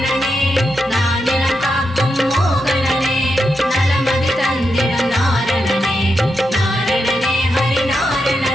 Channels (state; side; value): normal; both; correlation 0.85